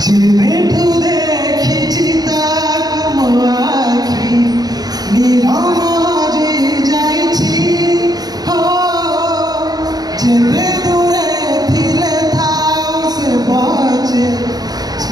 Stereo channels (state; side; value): late; left; 0.19 ms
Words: যেবেঠু দেখিছি তাকু মো আখি নিরম যে যাইছি হো যেবে দূরে থিলে থাও সে বাজে